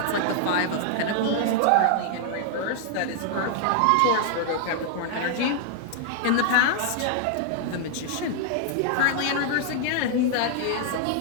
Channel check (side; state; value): both; different; correlation 0.00